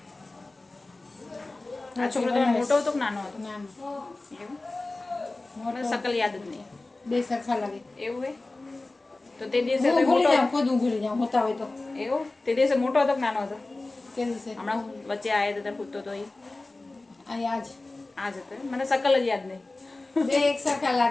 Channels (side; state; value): right; quieter; 3.1 dB